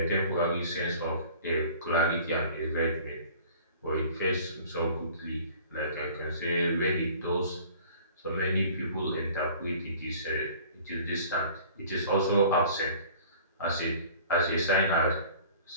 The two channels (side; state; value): both; inverted; correlation -0.48